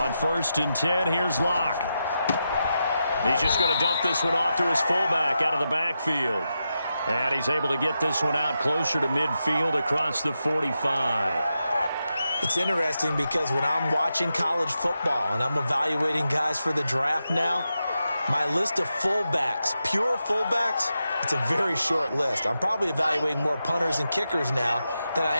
1st and 10, here's Locke. He's just going to dump this one off to his fullback out of the backfield. And he's able to get this one out closer to midfield across the 45. It's interesting because when I'm watching college football and I'm evaluating guys for the draft now, my list of fullbacks, pure fullbacks, it's a very short list. I'm probably evaluating more punters and kickers now than I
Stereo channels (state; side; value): inverted; both; correlation -0.88